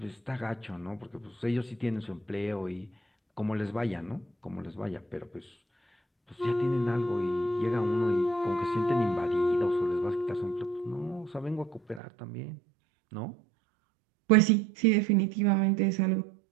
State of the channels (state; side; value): drops out; left; at 12.0 s